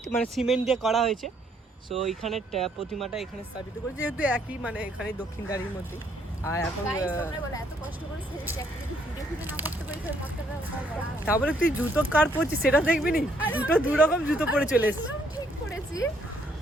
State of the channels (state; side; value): normal; both; correlation 0.69